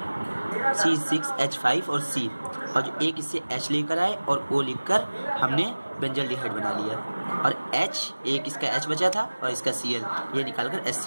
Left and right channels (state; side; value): inverted; both; correlation -1.00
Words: C6H5 और C, और जो एक इससे H लेकर आए और O लिखकर हमने बेंजल्डिहाइड बना लिया। और H, एक इसका H बचा था और इसका Cl, ये निकालकर